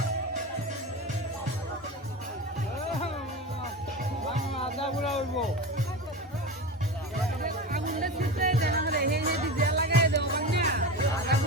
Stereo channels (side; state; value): both; normal; correlation 0.26